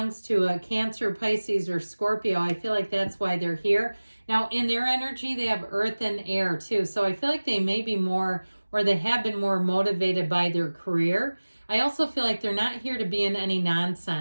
to a Cancer, Pisces, or Scorpio, I feel like that's why they're here. Now, in their energy, they have earth and air too. So I feel like they may be more, or they have been more motivated by their career. I also feel like they're not here to be in any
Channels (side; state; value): both; inverted; correlation -1.00